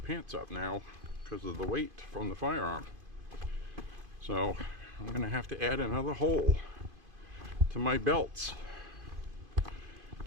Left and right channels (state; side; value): late; left; 2.5 ms